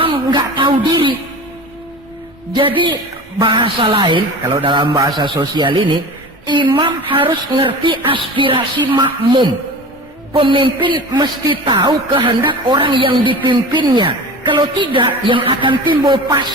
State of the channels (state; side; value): normal; both; correlation 0.34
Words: nggak tahu diri. Jadi bahasa lain, kalau dalam bahasa sosial ini, imam harus ngerti aspirasi makmum. Pemimpin mesti tahu kehendak orang yang dipimpinnya. Kalau tidak, yang akan timbul